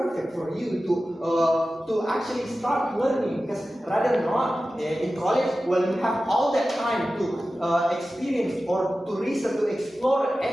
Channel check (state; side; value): normal; both; correlation 0.94